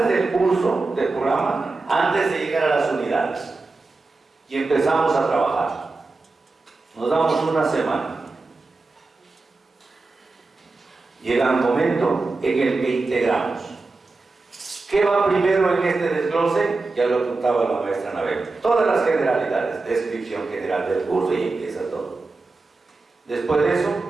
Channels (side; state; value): left; quieter; 3.6 dB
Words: del curso, del programa, antes de llegar a las unidades. Y empezamos a trabajar. Nos damos una semana. Llega un momento en el que integramos. ¿Qué va primero en este desglose? Ya lo contaba la maestra Anabel. Todas las generalidades, descripción general del curso, y empieza todo. Después de eso,